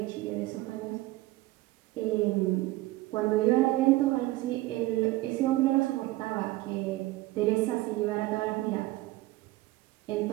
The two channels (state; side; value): quieter; left; 18.3 dB